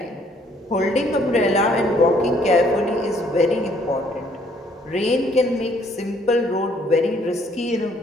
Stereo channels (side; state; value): both; normal; correlation 0.64